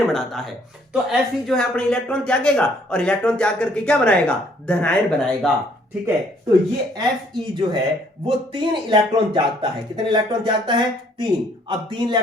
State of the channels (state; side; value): normal; both; correlation 0.64